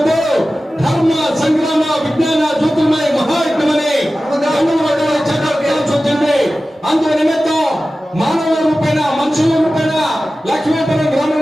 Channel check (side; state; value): both; normal; correlation 0.95